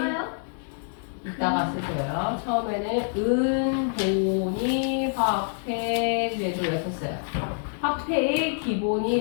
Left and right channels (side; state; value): right; silent; 61 dB below the other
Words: 이따가 쓰세요. 처음에는 은본이 화폐제도였었어요. 화폐의 기본이